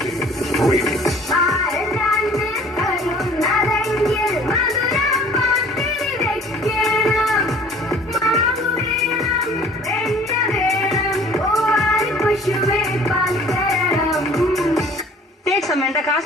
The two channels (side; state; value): both; normal; correlation 0.50